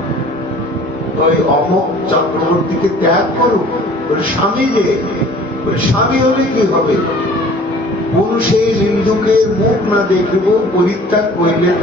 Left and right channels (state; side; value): normal; both; correlation 0.49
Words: ওই অমক চক্রবর্তীকে ত্যাগ করুক। বলে স্বামী রে, বলে স্বামী হলে কি হবে? পুরুষে নিন্দুকের মুখ না দেখিব পরিত্যাগ করিলে